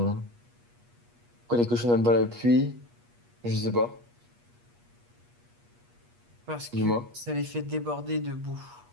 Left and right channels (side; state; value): left; late; 8.4 ms